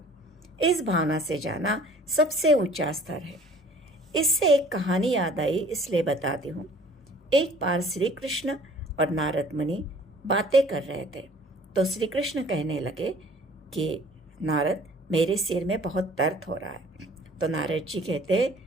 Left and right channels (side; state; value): both; normal; correlation 0.52